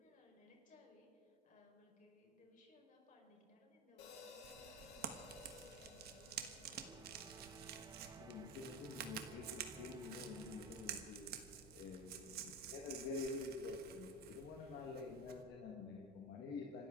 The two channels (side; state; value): both; normal; correlation 0.24